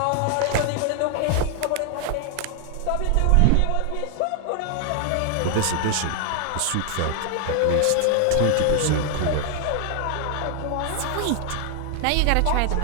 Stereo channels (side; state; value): both; different; correlation 0.00